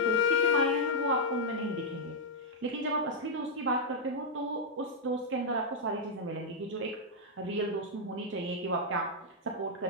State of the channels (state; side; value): normal; both; correlation -0.04